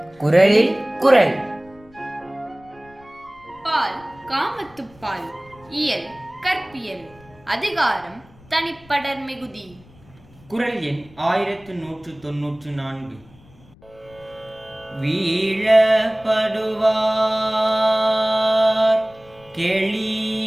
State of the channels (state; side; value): noise; left; rumble, 26 dB below the sound